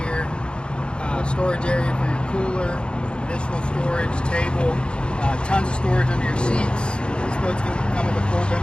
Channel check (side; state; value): right; late; 0.054 ms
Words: here, storage area for your cooler, additional storage, table, tons of storage under your seats. This boat's going to come with a full